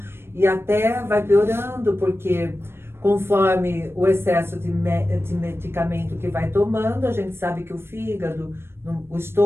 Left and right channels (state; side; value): late; left; 0.12 ms